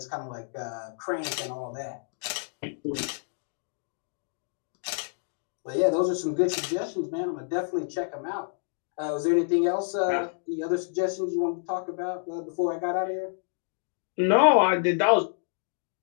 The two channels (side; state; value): right; silent; digital silence